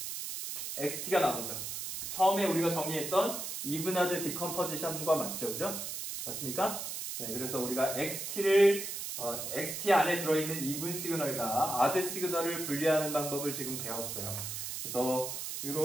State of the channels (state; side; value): noise; right; hiss, 5 dB below the sound